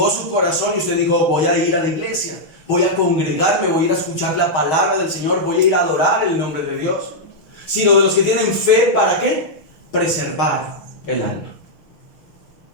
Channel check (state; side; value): late; right; 6.4 ms